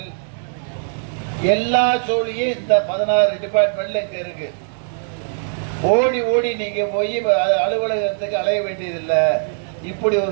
எல்லா சோழியும் இந்த 16 டிபார்ட்மெண்ட்ல இங்க இருக்கு. ஓடி ஓடி நீங்க போய் அலுவலகத்துக்கு அலைய வேண்டியதில்லை. இப்படி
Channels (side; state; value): left; silent; digital silence